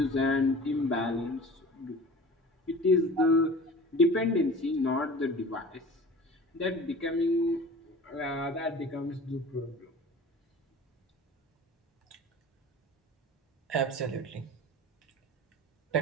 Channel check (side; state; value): both; normal; correlation 0.40